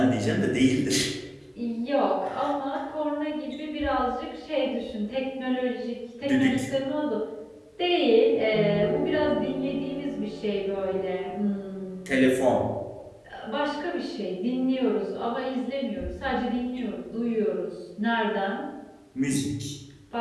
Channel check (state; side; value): identical; both; correlation 1.00